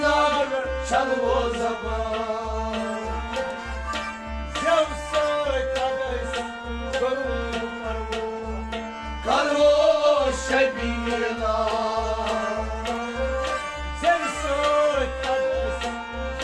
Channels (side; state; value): both; identical; correlation 1.00